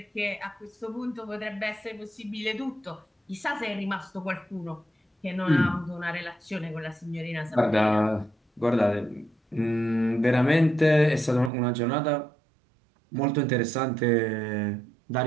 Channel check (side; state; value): left; drops out; at 11.5 s